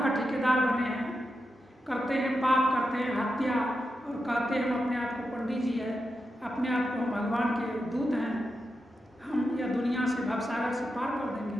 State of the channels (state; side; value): normal; both; correlation 0.88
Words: ठेकेदार बने हैं, करते हैं पाप, करते हैं हत्या और कहते हैं हम अपने आप को पंडित जी है, अपने आप को हम भगवान के दूत हैं, हम यह दुनिया से भवसागर से पार कर